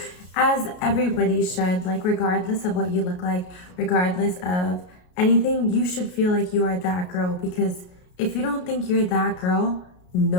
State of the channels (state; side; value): late; right; 33 ms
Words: As everybody should, like regardless of what you look like, regardless of anything, you should feel like you are that girl, because if you don't think you're that girl,